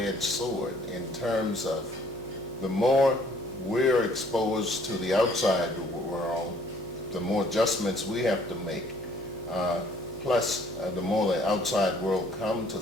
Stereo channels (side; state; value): left; noise; hum, 23 dB below the sound